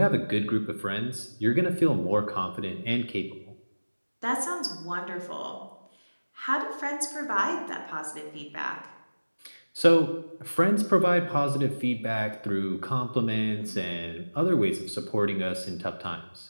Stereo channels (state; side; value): inverted; both; correlation -1.00